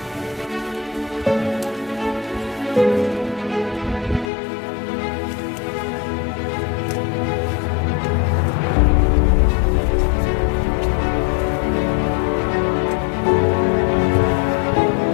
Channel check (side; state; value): right; drops out; at 4.3 s